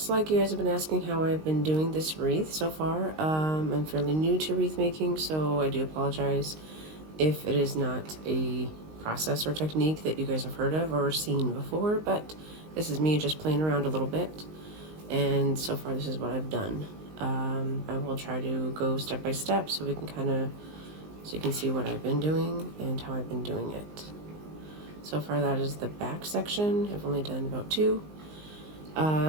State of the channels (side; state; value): left; late; 19 ms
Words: like you guys have been asking how I've been doing this wreath so far. I'm fairly new to wreath making, so I do apologize if it is not a process or technique that you guys have heard of or seen before, but this is me just playing around a little bit, and so far this is what I've done. I will try to go step by step so we can so you can see what I've been doing and how I've been doing it. So far that is the back section. I've only done about two.